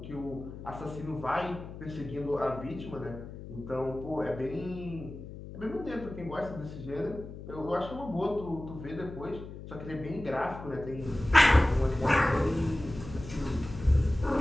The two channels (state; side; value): noise; left; hum, 12 dB below the sound